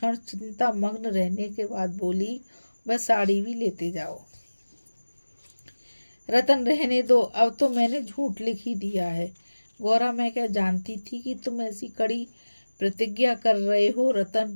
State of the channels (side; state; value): both; inverted; correlation -1.00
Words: चिंता मग्न रहने के बाद बोली, वह साड़ी भी लेते जाओ। रतन रहने दो, अब तो मैंने झूठ लिख ही दिया है। गौरा, मैं क्या जानती थी कि तुम ऐसी कड़ी प्रतिज्ञा कर रहे हो।